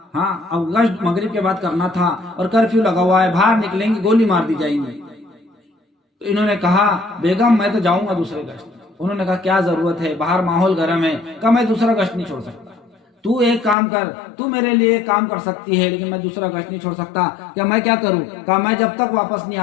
ہاں اب گشت مغرب کے بعد کرنا تھا اور کرفیو لگا ہوا ہے، باہر نکلیں گے گولی مار دی جائیں گی۔ تو انہوں نے کہا بیگم میں تو جاؤں گا دوسرے گشت۔ انہوں نے کہا کیا ضرورت ہے، باہر ماحول گرم ہے۔ کہا میں دوسرا گشت نہیں چھوڑ سکتا، تو ایک کام کر، تو میرے لیے ایک کام کر سکتی ہے لیکن میں دوسرا گشت نہیں چھوڑ سکتا۔ کیا میں کیا کروں؟ کہا میں جب تک واپس نہیں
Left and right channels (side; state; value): right; drops out; at 13.8 s